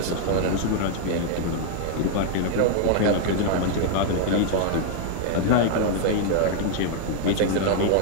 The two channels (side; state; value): both; different; correlation 0.00